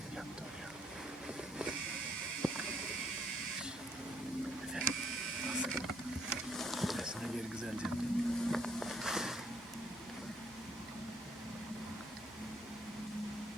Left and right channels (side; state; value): both; normal; correlation 0.69